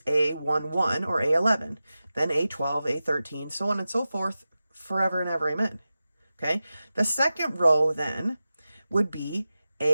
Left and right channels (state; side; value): inverted; both; correlation -0.94